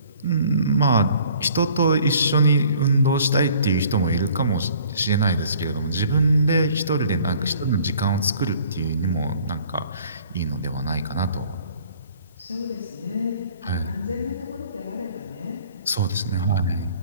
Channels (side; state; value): both; inverted; correlation -0.55